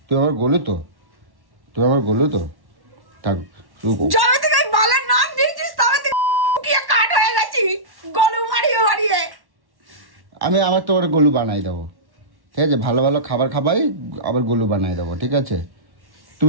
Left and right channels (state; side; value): late; left; 1.1 ms